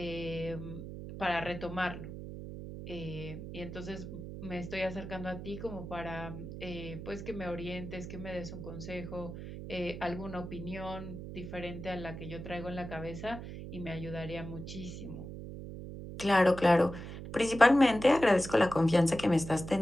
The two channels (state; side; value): noise; right; hum, 9 dB below the sound